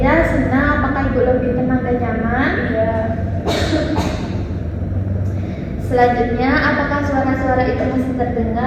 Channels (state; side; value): identical; both; correlation 1.00